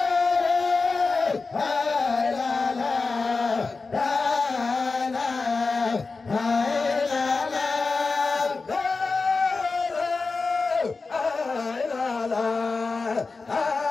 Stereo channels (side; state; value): right; quieter; 4.1 dB